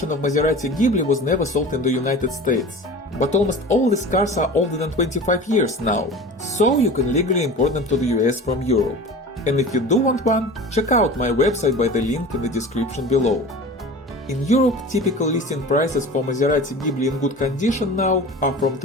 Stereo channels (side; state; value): both; normal; correlation 0.36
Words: of Maserati Ghibli was never sold in the United States, but almost all these cars are older than 25 years now, so you can legally import them to the US from Europe. And if you do want one, check out my website by the link in the description below. In Europe, typical listing prices for Maserati Ghibli in good condition now are from